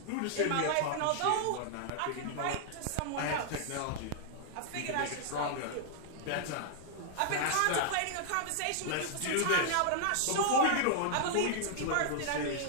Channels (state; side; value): different; both; correlation -0.01